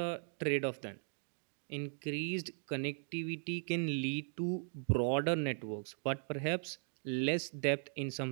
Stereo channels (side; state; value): left; silent; 52 dB below the other